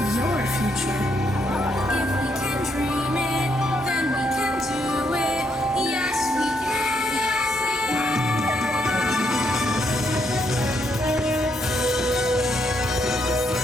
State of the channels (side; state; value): both; normal; correlation 0.76